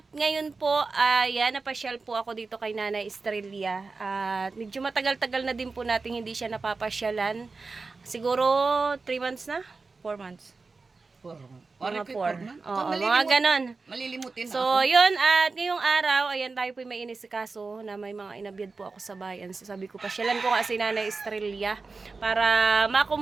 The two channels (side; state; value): left; quieter; 4.1 dB